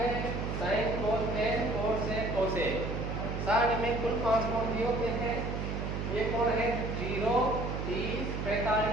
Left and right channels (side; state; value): right; noise; hum, 3 dB below the sound